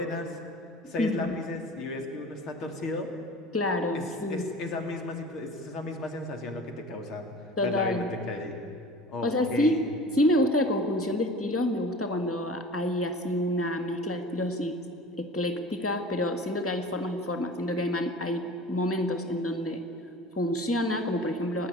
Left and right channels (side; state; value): both; normal; correlation 0.40